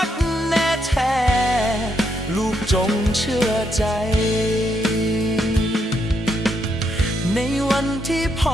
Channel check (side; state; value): both; normal; correlation 0.78